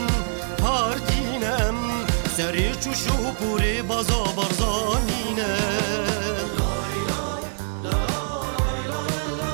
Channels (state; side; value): silent; left; digital silence